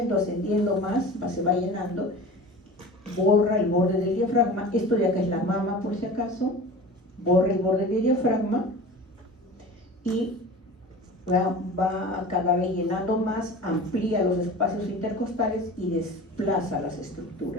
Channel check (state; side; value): normal; both; correlation 0.36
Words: más, se va llenando. Borra el borde del diafragma. Esto de acá es la mama, por si acaso. Borra el borde del diafragma y va cada vez llenando más, amplía los espacios intercostales y desplaza las